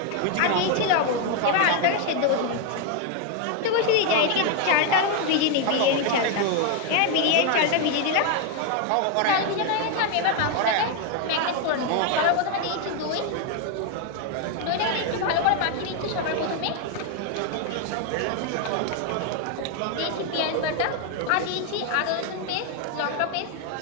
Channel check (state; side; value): different; both; correlation 0.01